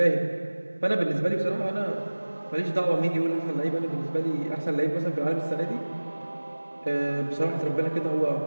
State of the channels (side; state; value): both; inverted; correlation -1.00